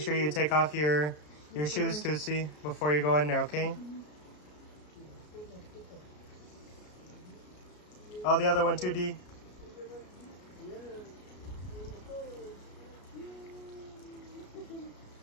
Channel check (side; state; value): right; late; 33 ms